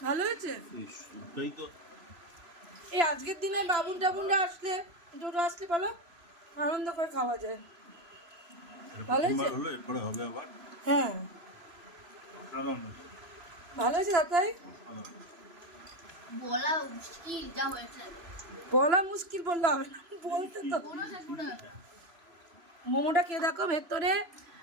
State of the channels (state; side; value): late; left; 3.0 ms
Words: ভালো হয়েছে। এই আজকের দিনে বাবুন টাবুনরা আসলে দুটো আসলে বলো আনন্দ করে খাওয়া যায়। ভালো হয়েছে। হ্যাঁ ভালো হয়েছে দাদাই। বলা মুশকিল যা হয়েছে। বলা মুশকিল বললে হবে না, বলতে তো। মোমোটা খেয়ে দেখো, ভেতরে